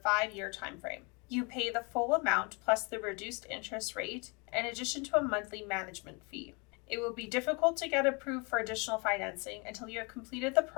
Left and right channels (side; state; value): right; quieter; 30.8 dB